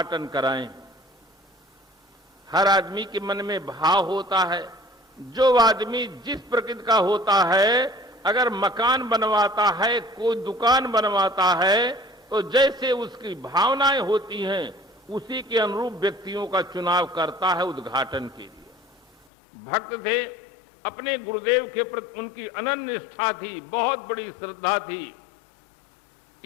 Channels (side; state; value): right; drops out; at 19.2 s